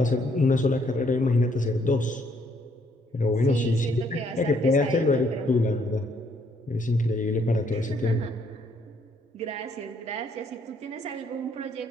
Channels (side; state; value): both; normal; correlation 0.68